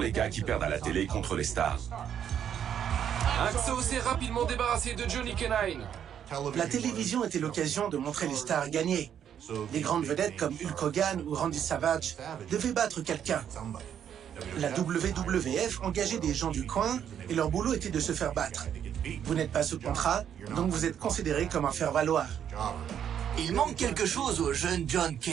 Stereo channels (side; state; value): left; quieter; 9.1 dB